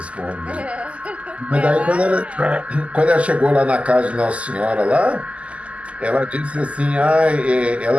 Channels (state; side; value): late; left; 0.063 ms